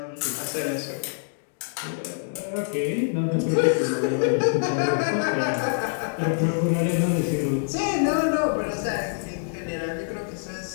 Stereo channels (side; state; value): right; silent; digital silence